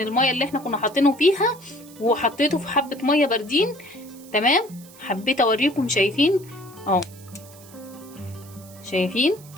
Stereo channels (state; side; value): noise; right; hiss, 22 dB below the sound